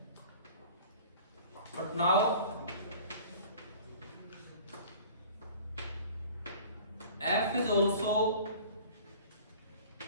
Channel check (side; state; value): both; inverted; correlation -0.45